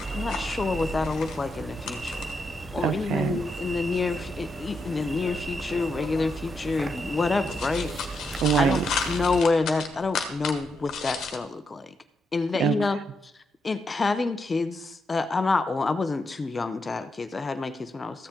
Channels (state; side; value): normal; both; correlation 0.82